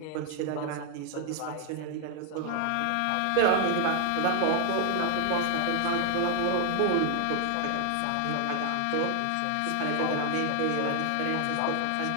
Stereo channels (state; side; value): different; both; correlation 0.00